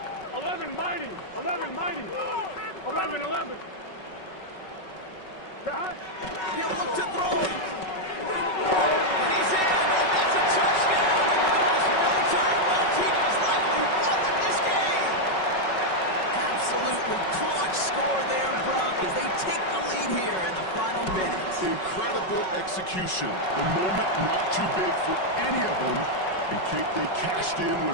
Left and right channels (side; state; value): right; late; 5.3 ms